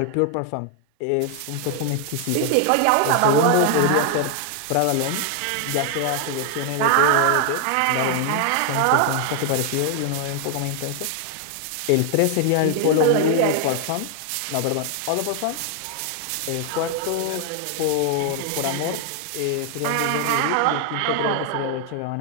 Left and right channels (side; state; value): both; different; correlation 0.00